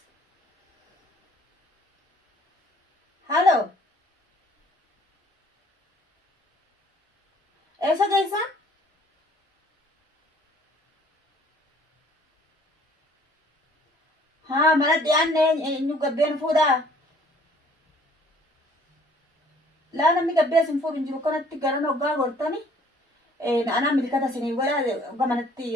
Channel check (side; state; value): both; normal; correlation 0.57